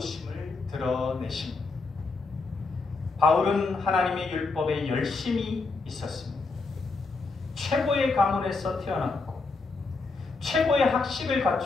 드러내십니다. 바울은 하나님의 율법에 열심히 있었습니다. 최고의 가문에서 태어났고 최고의 학식을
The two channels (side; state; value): right; quieter; 3.9 dB